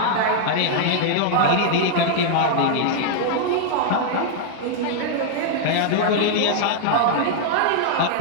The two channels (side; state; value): both; different; correlation -0.01